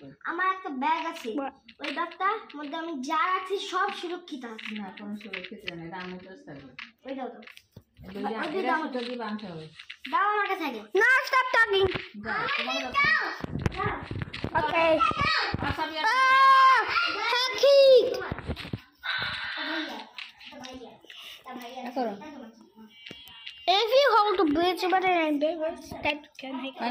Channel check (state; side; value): identical; both; correlation 1.00